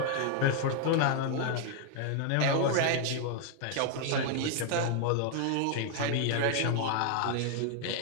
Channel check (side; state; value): both; different; correlation 0.00